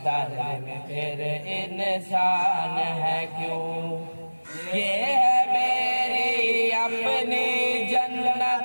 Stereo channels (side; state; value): both; inverted; correlation -1.00